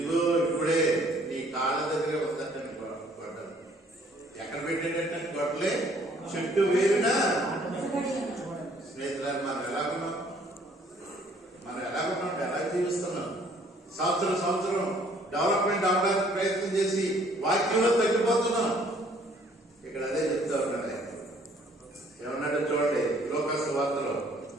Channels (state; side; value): normal; both; correlation 0.61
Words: ఇప్పుడే నీ కాళ్ళ దగ్గర వద్దట గొడ్డలు. ఎక్కడ పెట్టేటట్టు గొడ్డలే చెట్టు వేరునా. స్నేహితులు మనం ఎలాగున్నాం? ఎలా జీవిస్తున్నాం? సంవత్సరం డెవలప్మెంట్ అవడానికి ప్రయత్నం చేసి వాక్యంలో తగ్గిపోతున్నాం. ఇక్కడ అదే చెప్తా ఉన్నాడు. ఏమన్నాడో చూడండి. లోకాసు వార్తలో